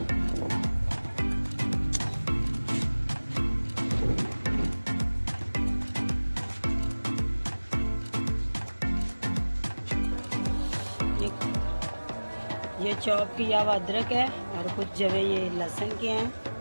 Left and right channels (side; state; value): both; inverted; correlation -1.00